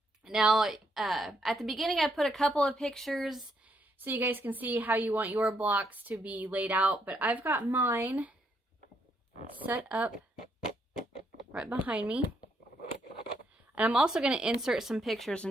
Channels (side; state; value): both; normal; correlation 0.74